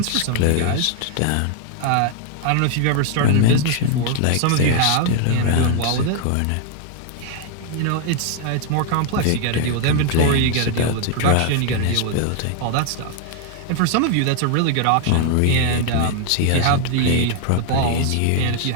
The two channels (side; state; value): both; different; correlation 0.00